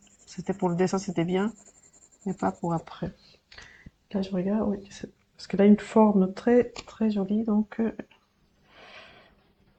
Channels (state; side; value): identical; both; correlation 1.00